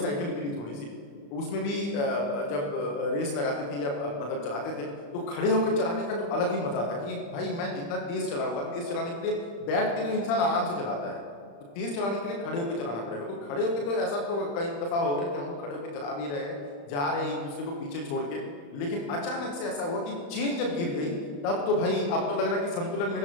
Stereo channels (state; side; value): late; right; 35 ms